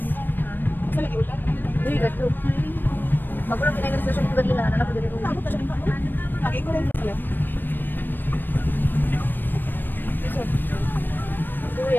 Asa lagi ulan? Uy, gato. Magulang pinay na station ko ganila, anak ko diri. Lagi ko rin sila. Uy,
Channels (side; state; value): right; late; 0.093 ms